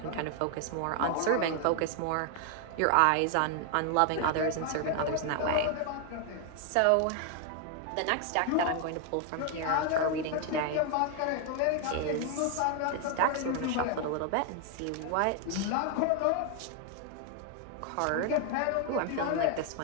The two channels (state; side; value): different; both; correlation 0.00